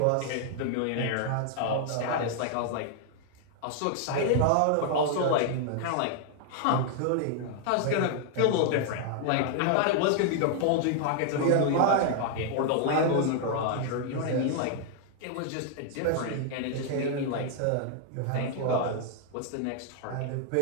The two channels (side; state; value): both; different; correlation 0.00